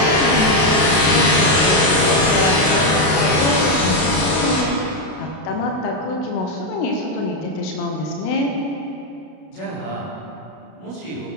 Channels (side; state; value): right; late; 32 ms